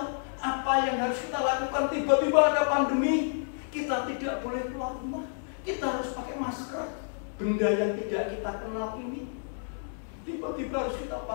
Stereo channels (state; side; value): silent; right; digital silence